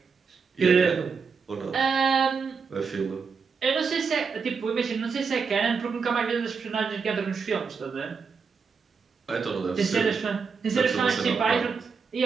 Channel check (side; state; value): left; quieter; 5.4 dB